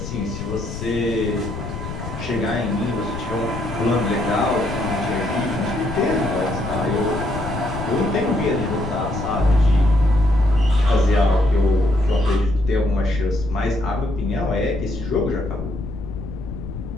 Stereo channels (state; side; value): noise; left; rumble, 8 dB below the sound